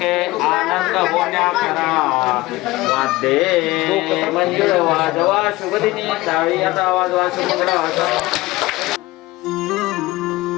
आनंद होण्या करा. वाद्ये मंजुळ वाजवा शुभदिनी टाळी आता वाजवा शुभमंगल.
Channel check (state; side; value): quieter; right; 19.5 dB